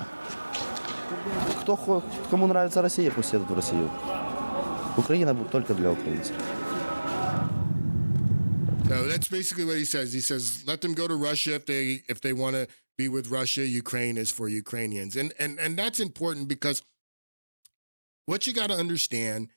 Кому нравится Россия, пусть едут в Россию. Украина только для украинцев. So that's basically what he says. He says, let them go to Russia if they want to be with Russia. Ukraine is for Ukrainians. And that's important because what you got to understand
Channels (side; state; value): both; inverted; correlation -1.00